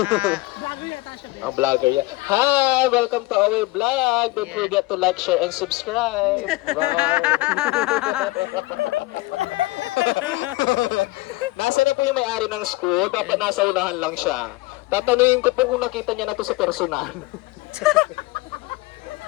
Vlogger yan. Hi! Welcome to our vlog. Don't forget to like, share, and subscribe. Bye! Nasa na po yung may-ari ng school? Dapat nasa unahan lang siya. Tatanungin ko po kung nakita niya na to sa personal.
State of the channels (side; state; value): right; quieter; 21.1 dB